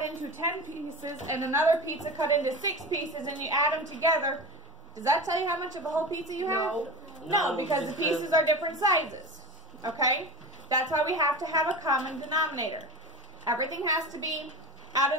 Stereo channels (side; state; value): both; normal; correlation 0.29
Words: into 10 pieces and another pizza cut into 6 pieces and you add them together, does that tell you how much of a whole pizza you have? No, because the pieces are different sizes. Okay? That's why we have to have a common denominator. Everything has to be out